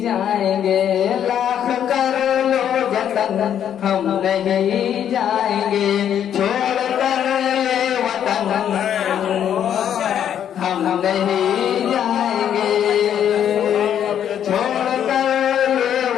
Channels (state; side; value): quieter; right; 9.5 dB